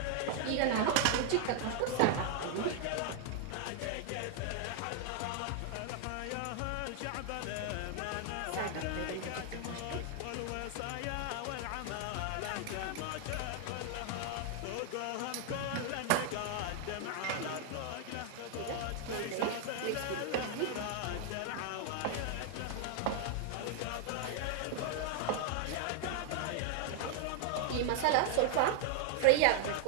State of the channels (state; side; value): different; both; correlation 0.00